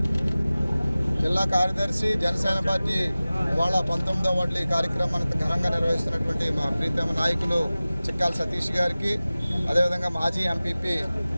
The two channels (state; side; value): inverted; both; correlation -0.97